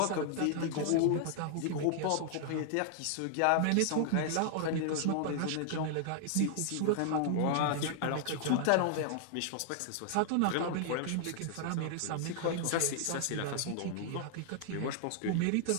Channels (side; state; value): both; different; correlation -0.01